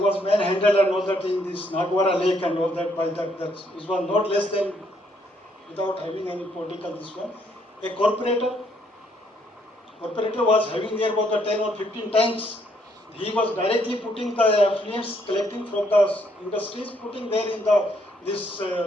manhandled and all that in this Nagwara lake and all that by that was not less than, without having any political this one, a corporator was having there about the 10 or 15 tanks. He was directly putting the affluents collecting from the industries, putting there in this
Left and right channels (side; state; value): both; normal; correlation 0.70